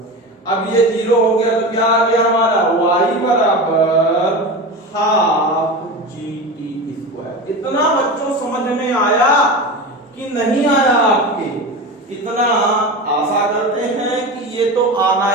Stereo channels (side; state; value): both; normal; correlation 0.26